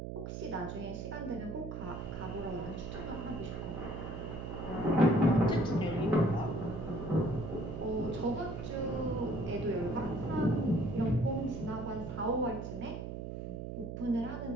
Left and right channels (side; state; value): right; noise; hum, 6 dB below the sound